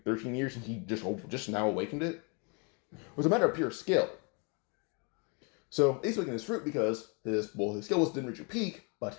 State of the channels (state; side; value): quieter; right; 32.8 dB